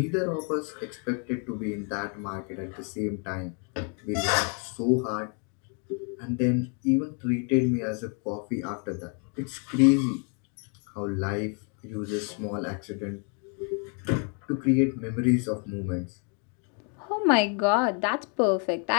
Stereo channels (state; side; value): quieter; right; 38.9 dB